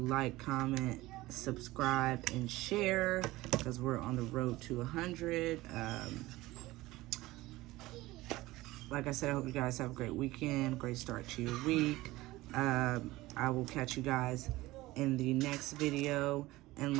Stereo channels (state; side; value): quieter; left; 18.6 dB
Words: like, comment, subscribe, and share, because we're on the road to 100. Like I said, I hope you guys have a great weekend, great start to your week. I will catch you guys in the next video. And